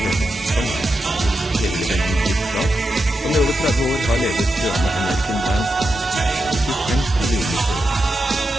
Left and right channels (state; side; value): normal; both; correlation 0.88